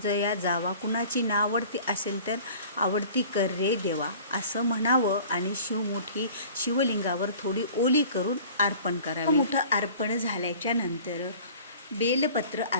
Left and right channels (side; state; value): both; inverted; correlation -0.45